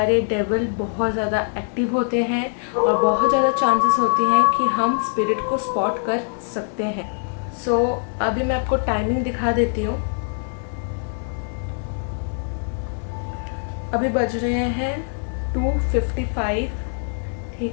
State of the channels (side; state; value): right; silent; 64 dB below the other